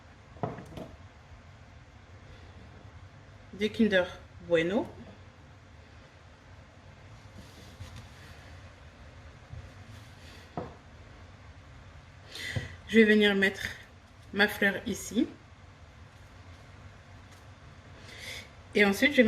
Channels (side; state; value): both; identical; correlation 1.00